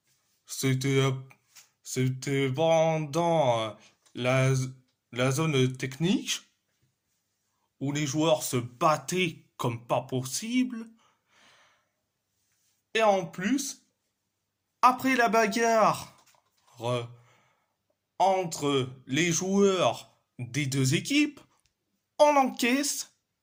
c'était c'était pendant la, la zone technique où les joueurs se battaient comme pas possible. Et en plus, après la bagarre entre les joueurs des deux équipes, on encaisse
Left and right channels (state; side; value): identical; both; correlation 1.00